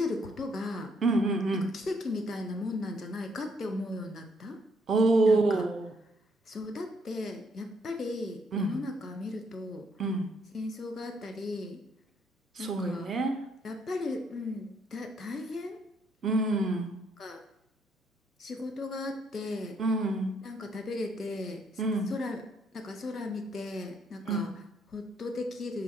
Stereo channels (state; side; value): normal; both; correlation 0.71